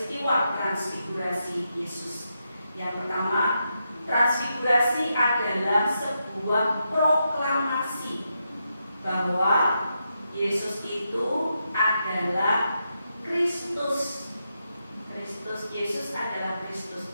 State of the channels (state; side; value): inverted; both; correlation -0.84